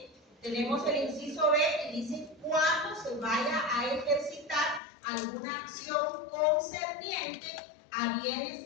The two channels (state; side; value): drops out; right; at 4.8 s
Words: Tenemos el inciso B y dice cuándo se vaya a ejercitar alguna acción concerniente a